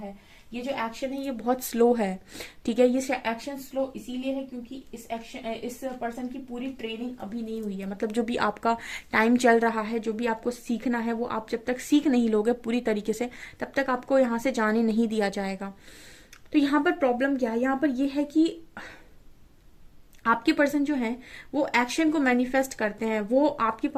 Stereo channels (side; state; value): both; identical; correlation 1.00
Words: ये जो एक्शन है ये बहुत स्लो है, ठीक है। ये एक्शन स्लो इसीलिए है क्योंकि इस पर्सन की पूरी ट्रेनिंग अभी नहीं हुई है। मतलब जो भी आपका टाइम चल रहा है, जो भी आपको सीखना है, वो आप जब तक सीख नहीं लोगे पूरी तरीके से, तब तक आपको यहाँ से जाने नहीं दिया जाएगा। तो यहाँ पर प्रॉब्लम क्या है, यहाँ पर ये है कि आपके पर्सन जो है वो एक्शन को मैनिफेस्ट करते हैं, वो आपके